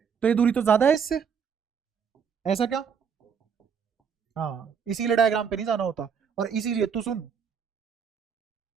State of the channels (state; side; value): quieter; left; 6.9 dB